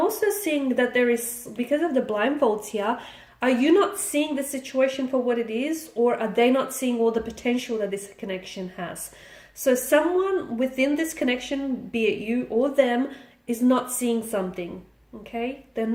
seeing that there is, because of the blindfolds here, are you not seeing the situation for what it is, or are they not seeing all the potential that this connection has? So someone within this connection, be it you or them, is not seeing something, okay? They're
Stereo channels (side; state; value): both; identical; correlation 1.00